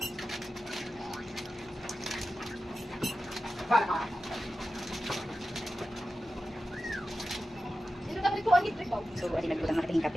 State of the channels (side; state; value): both; normal; correlation 0.93